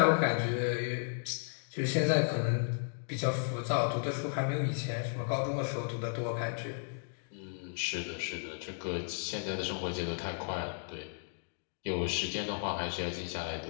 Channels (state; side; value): silent; right; digital silence